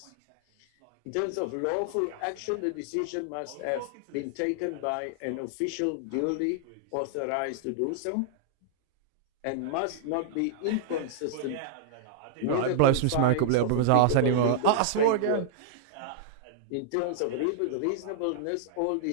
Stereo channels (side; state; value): both; different; correlation -0.01